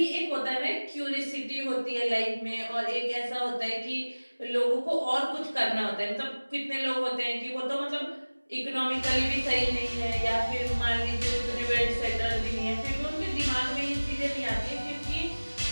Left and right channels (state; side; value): inverted; both; correlation -1.00